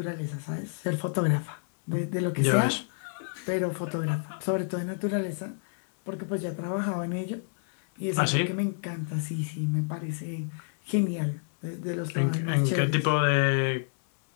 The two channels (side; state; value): right; silent; 59 dB below the other